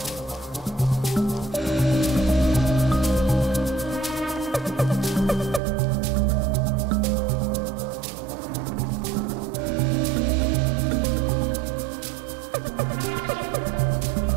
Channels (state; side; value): drops out; left; at 5.6 s